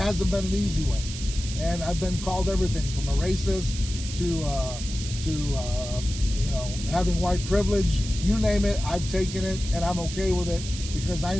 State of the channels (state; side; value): noise; right; hiss, 10 dB below the sound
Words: been an easy way. And I've been called everything from a racist to having white privilege. You name it, I've taken it, and I'm okay with it, because I